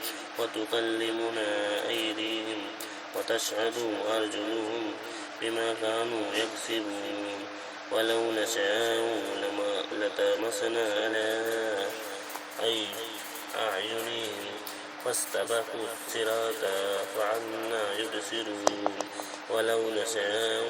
وتكلمنا أيديهم وتشهد أرجلهم بما كانوا يكسبون ولو نشاء لطمسنا على أعينهم فاستبقوا الصراط فعنا يبصرون ولو نشاء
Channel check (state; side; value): identical; both; correlation 1.00